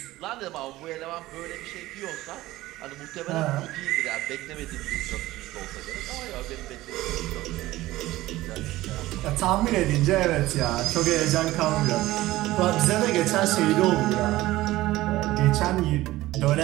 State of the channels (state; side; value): quieter; left; 17.1 dB